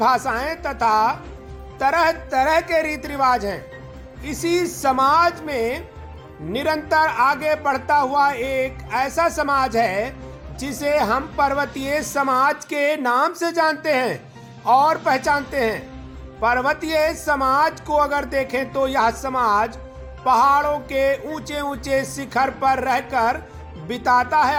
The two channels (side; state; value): both; identical; correlation 1.00